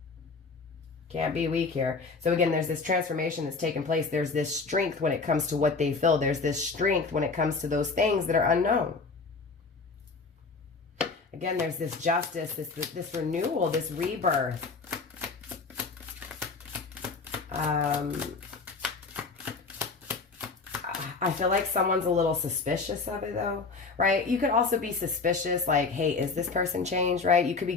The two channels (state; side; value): quieter; right; 4.3 dB